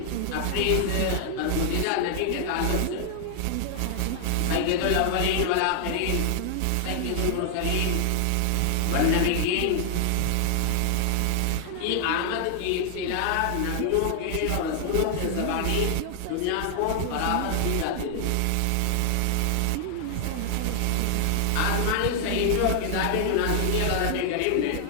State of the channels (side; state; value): both; different; correlation 0.00